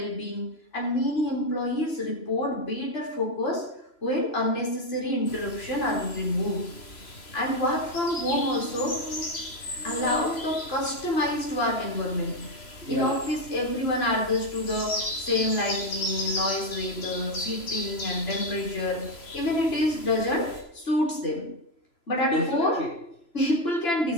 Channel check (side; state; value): right; late; 3.0 ms